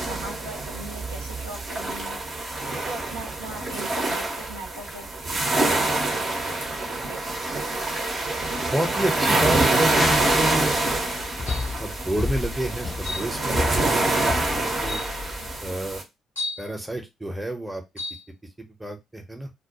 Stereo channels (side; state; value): both; normal; correlation 0.83